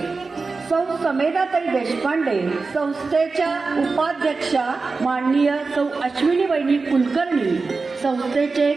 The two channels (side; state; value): left; quieter; 4.1 dB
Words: सौ समेधाताई देशपांडे, संस्थेच्या उपाध्यक्षा माननीय सौ अश्विनी वैनी कुलकर्णी, संस्थेचे